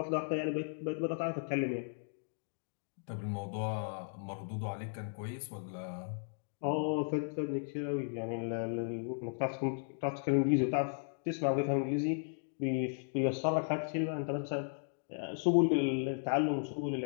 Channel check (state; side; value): silent; right; digital silence